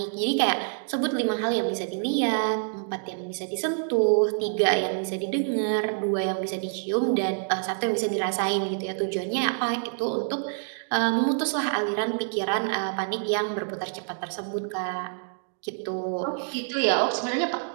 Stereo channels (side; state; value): left; silent; 60 dB below the other